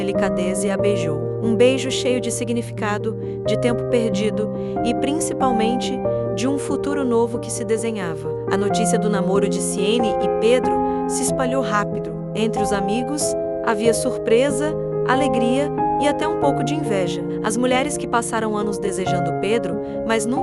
e a beijou. Um beijo cheio de significado, de tempo perdido e, principalmente, de um futuro novo que se desenhava. A notícia do namoro de Siene e Pedro se espalhou rápido. Entre os amigos, havia surpresa, alegria e até um pouco de inveja. As mulheres que passaram anos desejando Pedro, mas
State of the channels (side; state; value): both; identical; correlation 1.00